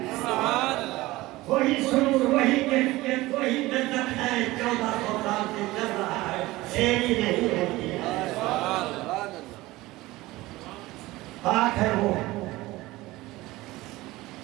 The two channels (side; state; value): left; quieter; 19.0 dB